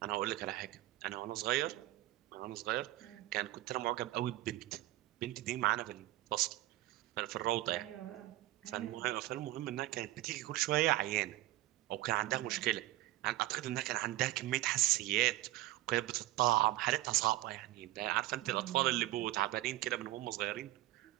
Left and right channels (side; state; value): left; quieter; 17.0 dB